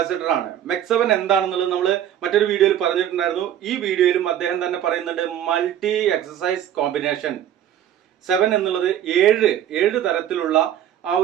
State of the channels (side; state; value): left; quieter; 10.7 dB